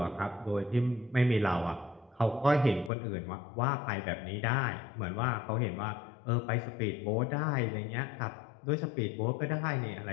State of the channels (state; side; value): drops out; right; at 2.9 s